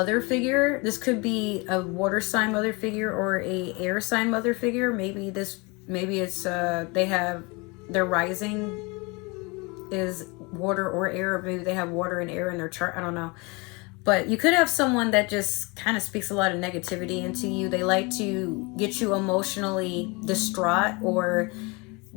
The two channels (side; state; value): right; quieter; 27.7 dB